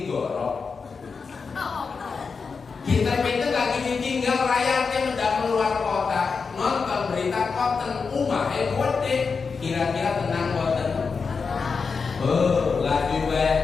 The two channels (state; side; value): quieter; right; 5.1 dB